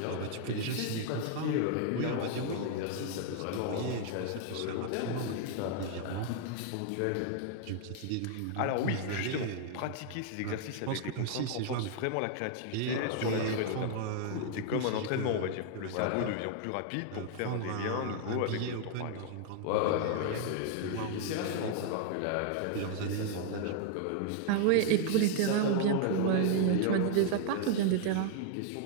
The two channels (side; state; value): both; different; correlation 0.00